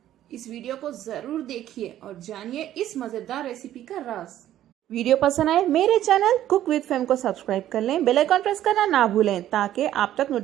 इस वीडियो को जरूर देखिए और जानिए इस मजेदार रेसिपी का राज। वीडियो पसंद आए मेरे चैनल कुक विद फेम को सब्सक्राइब कर लें, बेल आइकन प्रेस करना ना भूलें ताकि आप तक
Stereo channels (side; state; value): left; quieter; 12.4 dB